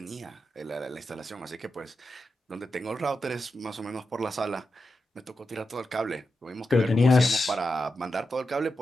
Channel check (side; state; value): both; normal; correlation 0.88